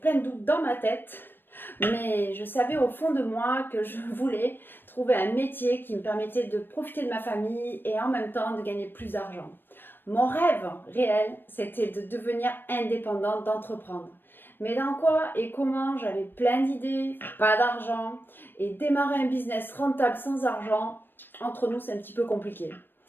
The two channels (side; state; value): right; late; 0.099 ms